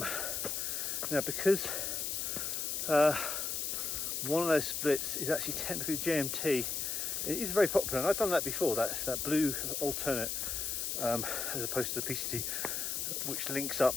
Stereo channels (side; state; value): left; noise; hiss, 1 dB below the sound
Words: because one of those splits is actually technically JMT, it is very popular, and I've done that before. That's that blue alternate, as opposed to the PCT, which links